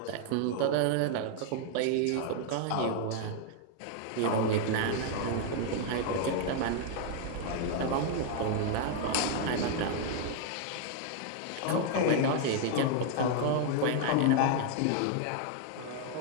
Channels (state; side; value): different; both; correlation 0.00